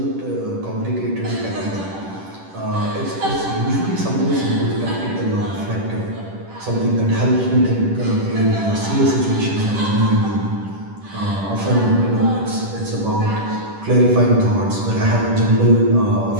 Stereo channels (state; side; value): late; left; 10 ms